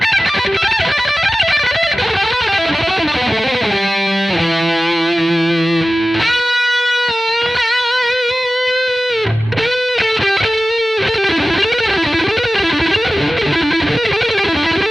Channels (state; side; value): normal; both; correlation 0.95